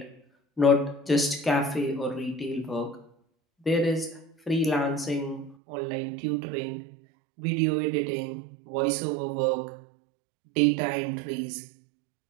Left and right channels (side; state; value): left; drops out; at 5.6 s